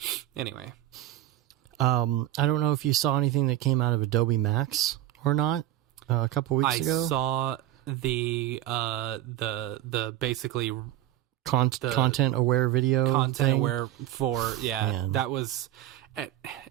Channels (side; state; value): left; quieter; 13.4 dB